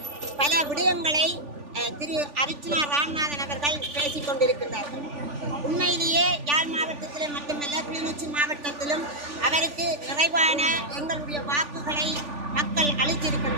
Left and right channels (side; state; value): left; late; 3.4 ms